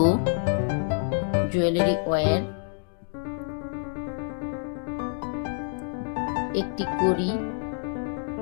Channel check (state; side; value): silent; right; 58 dB below the other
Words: জুয়েলারি ওয়্যার, একটি কড়ি,